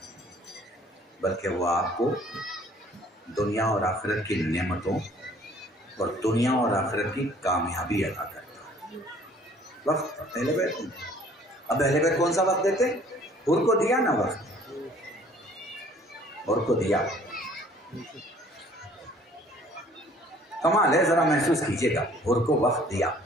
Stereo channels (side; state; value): both; normal; correlation 0.55